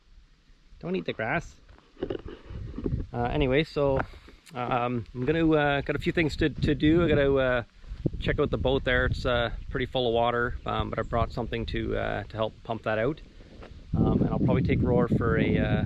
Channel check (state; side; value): identical; both; correlation 1.00